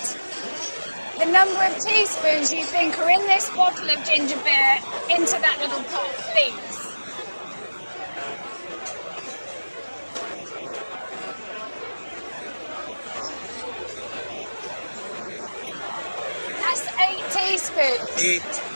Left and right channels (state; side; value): inverted; both; correlation -1.00